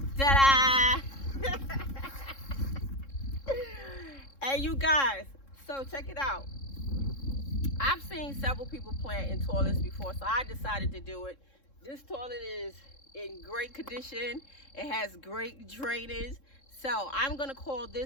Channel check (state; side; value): late; right; 3.7 ms